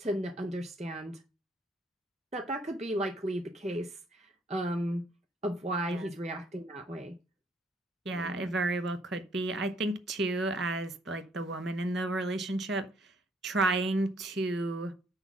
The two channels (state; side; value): normal; both; correlation 0.66